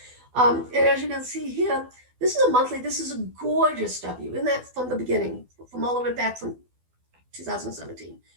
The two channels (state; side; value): late; left; 12 ms